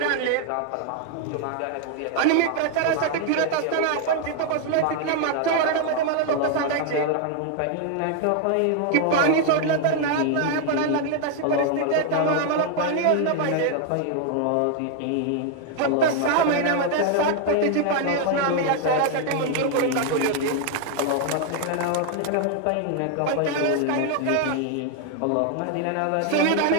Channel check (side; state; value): both; different; correlation 0.00